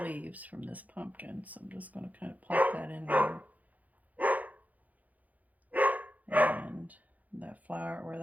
leaves from this pumpkin, so I'm just going to kind of pop that in there. And that flower, where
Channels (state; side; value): late; left; 0.077 ms